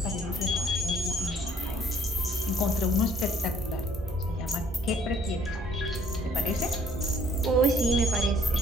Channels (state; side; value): normal; both; correlation 0.61